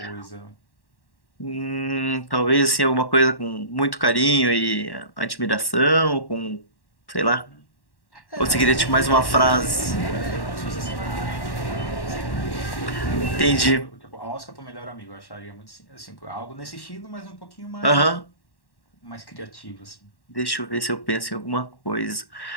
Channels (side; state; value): right; late; 1.1 ms